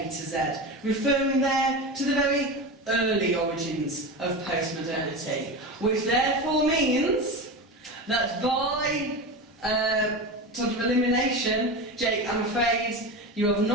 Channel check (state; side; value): normal; both; correlation 0.24